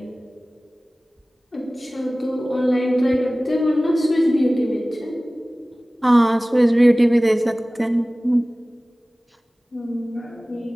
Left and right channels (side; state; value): both; normal; correlation 0.98